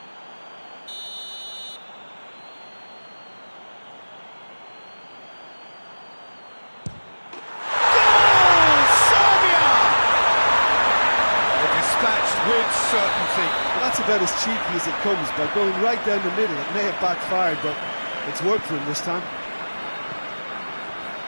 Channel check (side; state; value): both; inverted; correlation -1.00